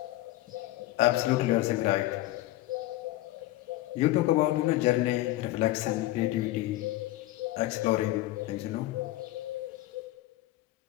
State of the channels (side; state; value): right; quieter; 16.7 dB